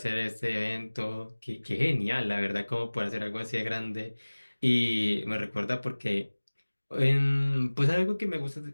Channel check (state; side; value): inverted; both; correlation -1.00